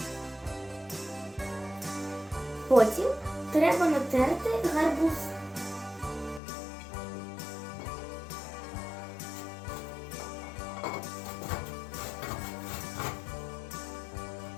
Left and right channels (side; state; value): right; drops out; at 6.4 s